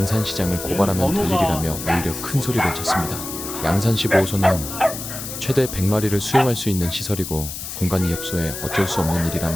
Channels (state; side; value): noise; left; hiss, 8 dB below the sound